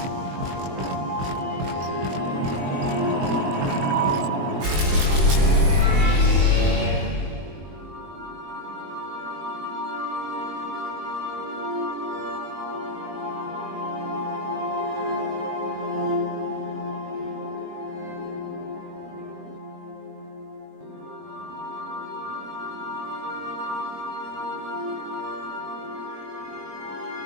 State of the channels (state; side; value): late; left; 21 ms